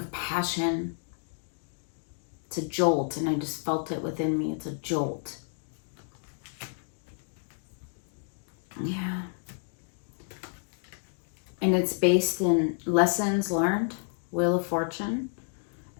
passion. It's a jolt, and I just felt it within me. It's a jolt. Yeah. And it's based in lessons learned, Wheel of Fortune,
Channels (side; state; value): right; silent; 58 dB below the other